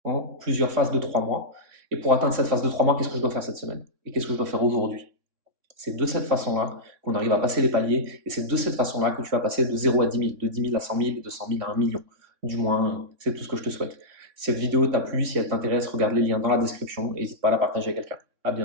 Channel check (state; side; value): late; left; 3.6 ms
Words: en plusieurs phases de 3 mois? Et pour atteindre cette phase de 3 mois, qu'est-ce que je dois faire cette semaine? Et qu'est-ce que je dois faire aujourd'hui? C'est de cette façon-là qu'on arrive à passer les paliers, et c'est de cette façon-là que tu vas passer de 0 à 10 000, de 10 000 à 100 000, et de 100 000 à 1 million. Du moins, c'est tout ce que je te souhaite. Si cette vidéo t'a plu, si elle t'intéresse, regarde les liens dans la description et n'hésite pas à la partager à quelqu'un. À